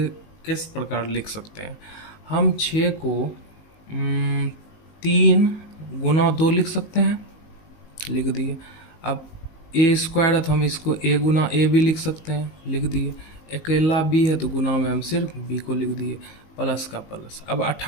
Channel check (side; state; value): right; late; 19 ms